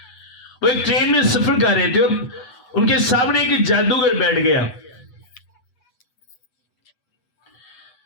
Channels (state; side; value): late; right; 8.1 ms